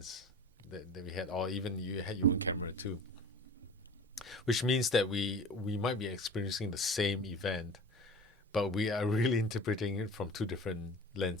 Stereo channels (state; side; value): normal; both; correlation 0.38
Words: that we had, or even you had your own camera too. Which means that we might be experiencing the same event, but we are really interpreting it from two different